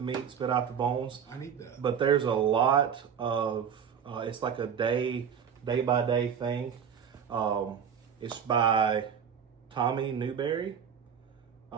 meat, spit out the bones. I need that. But there's a lot of, it's like a day-by-day thing. It's by Tommy Newberry.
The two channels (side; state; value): left; quieter; 7.6 dB